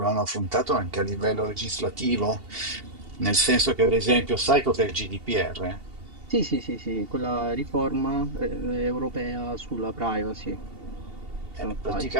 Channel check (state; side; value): late; left; 2.8 ms